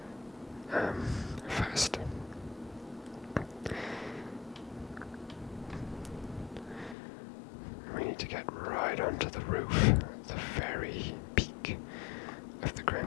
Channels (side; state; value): right; drops out; at 7.0 s